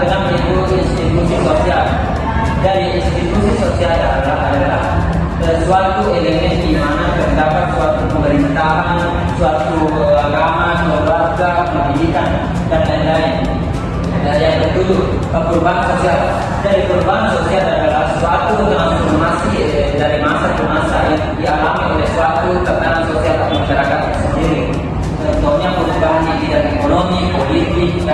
keenam itu institusi sosial. Dari institusi sosial adalah suatu elemen di mana terdapat suatu pemerintahan, suatu agama, keluarga, pendidikan, dan lain-lain. Yang ketujuh, perubahan sosial. Dari perubahan sosial adalah suatu transformasi dari masa ke masa yang dialami oleh suatu tatanan sosial atau masyarakat sendiri. Contohnya perubahan di bidang ekonomi, politik,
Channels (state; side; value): identical; both; correlation 1.00